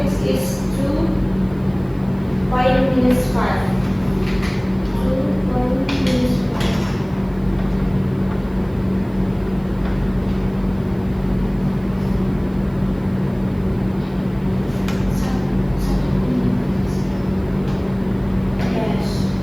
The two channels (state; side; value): noise; right; hiss, 30 dB below the sound